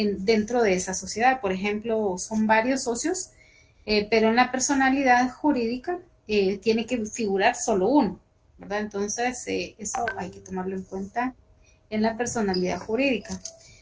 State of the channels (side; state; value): both; identical; correlation 1.00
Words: de esa sociedad. Por ejemplo, son varios socios pero en la personalidad jurídica tiene que figurar solo uno, ¿verdad? Entonces, eso hay que tomarlo en cuenta en la personalidad jurídica.